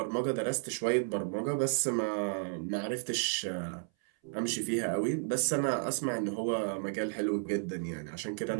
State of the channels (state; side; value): silent; left; 56 dB below the other